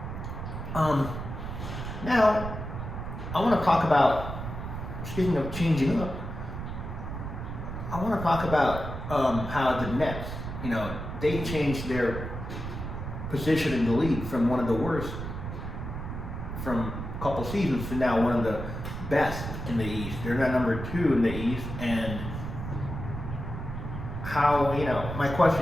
now I want to talk about, speaking of changing up, I want to talk about how the Nets, they changed their position in the league from one of the worst from a couple seasons to now one of the best in the East. They're now number 2 in the East. And how, my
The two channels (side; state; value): right; noise; rumble, 7 dB below the sound